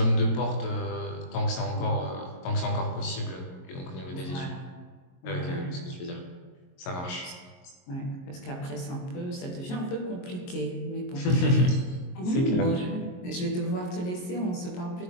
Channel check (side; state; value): right; late; 22 ms